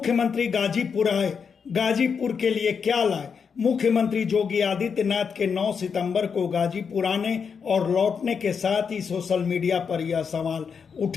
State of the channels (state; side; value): quieter; right; 6.2 dB